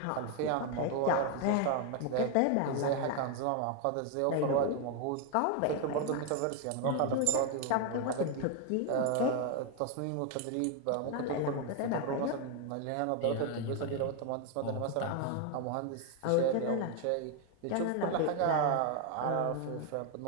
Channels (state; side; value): different; both; correlation 0.01